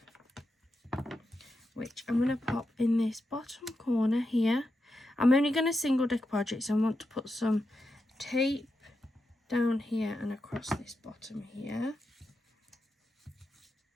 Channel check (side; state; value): both; normal; correlation 0.87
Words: which I'm going to pop in this bottom corner here. I'm only going to single decoupage it, so I want to put some tape down here and across this bottom here.